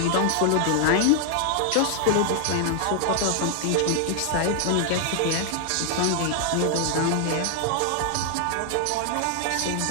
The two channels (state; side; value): different; both; correlation 0.00